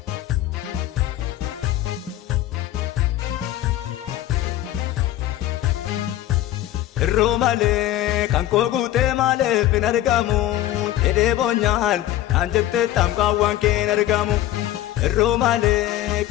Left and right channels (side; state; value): right; quieter; 13.8 dB